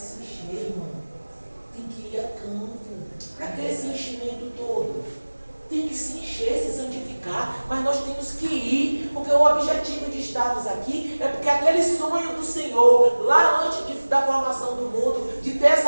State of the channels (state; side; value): inverted; both; correlation -1.00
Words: se encher, irmão. Tem que ir a campo. Para que esse enchimento todo? Tem que se encher, se santificar, mas nós temos que ir, porque o objetivo de estarmos aqui é porque aquele sonho do Senhor, lá antes da formação do mundo, de ter